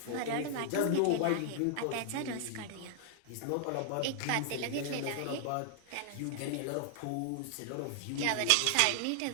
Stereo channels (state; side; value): different; both; correlation 0.00